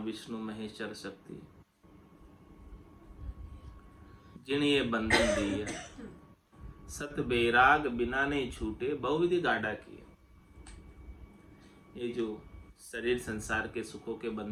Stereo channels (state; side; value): identical; both; correlation 1.00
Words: महेश्वर शक्ति, जिन ये बंधन दिया, सत बैराग बिना नहीं छूटे, बहुविधि गाढ़ा किए। ये जो शरीर संसार के सुखों के